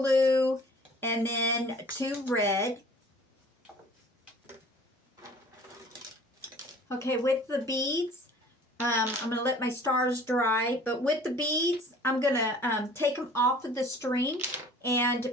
and then 2 red. Okay, with the beads, I'm going to let my stars dry. But with the beads, I'm going to take them off of the string and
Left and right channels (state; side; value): normal; both; correlation 0.49